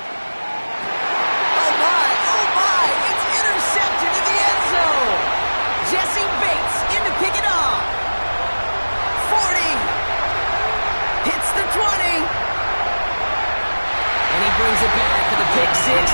Oh my, it's intercepted in the end zone. Jesse Bates in to pick it off. 40. Hits the 20. And he brings it back for the pick 6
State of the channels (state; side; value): inverted; both; correlation -1.00